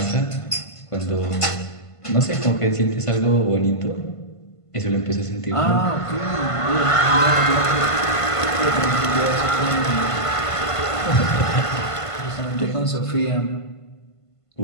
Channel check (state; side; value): late; right; 1.5 ms